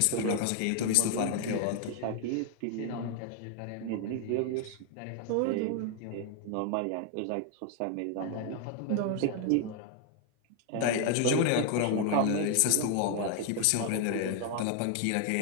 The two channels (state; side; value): different; both; correlation 0.00